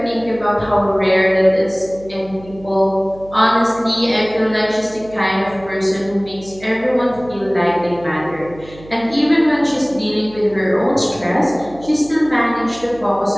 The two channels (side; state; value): right; noise; hum, 20 dB below the sound